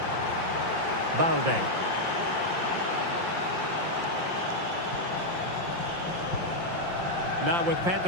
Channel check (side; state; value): left; late; 5.7 ms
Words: Balde. Now with